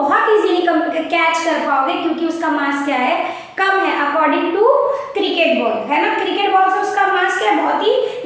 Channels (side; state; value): both; identical; correlation 1.00